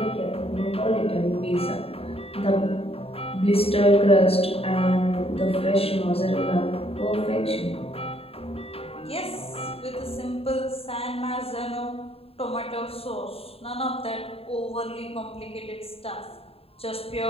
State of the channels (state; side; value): late; right; 0.28 ms